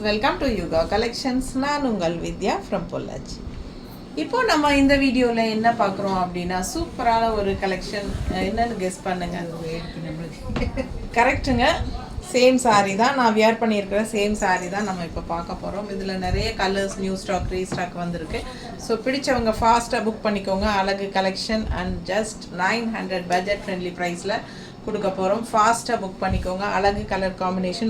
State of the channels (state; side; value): identical; both; correlation 1.00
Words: welcome to Yuga Collections. நான் உங்கள் வித்யா from Pollachi. இப்போ நம்ம இந்த வீடியோல என்ன பார்க்குறோம் அப்படின்னா சூப்பரான ஒரு கலெக்ஷன். என்னன்னு கெஸ் பண்ணுங்க. கரெக்ட்டுங்க. சேம் சாரீ தான் நான் வியர் பண்ணியிருக்கிற சேம் சாரீ தான் நம்ம இப்போ பார்க்க போகிறோம். இதில் நிறைய கலர்ஸ் நியூ ஸ்டாக் ரீஸ்டாக் வந்திருக்கு. ஸோ பிடிச்சவங்க ஃபாஸ்ட்டாக புக் பண்ணிக்கோங்க. அழகு collection and just 900 budget friendly ப்ரைஸில் கொடுக்க போகிறோம். ஃபாஸ்ட்டாக புக் பண்ணிக்கோங்க. அழகு கலர்